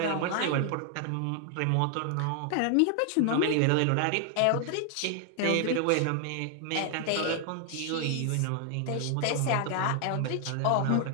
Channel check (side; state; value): both; different; correlation 0.00